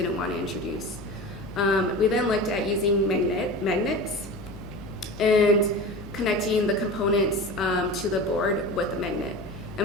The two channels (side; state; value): left; noise; hum, 16 dB below the sound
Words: want to introduce. We then looked at using magnets and connecting the components to the board with a magnet.